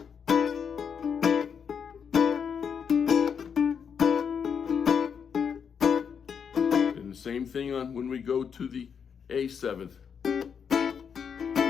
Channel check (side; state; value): right; quieter; 6.9 dB